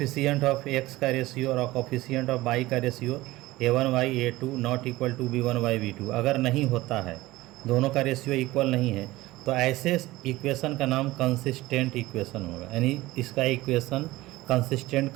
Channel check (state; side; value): quieter; left; 18.4 dB